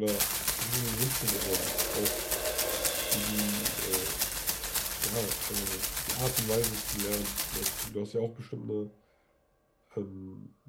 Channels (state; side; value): identical; both; correlation 1.00